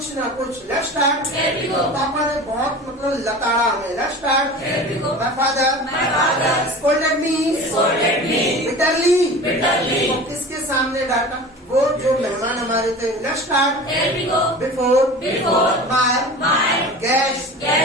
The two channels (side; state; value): both; normal; correlation 0.36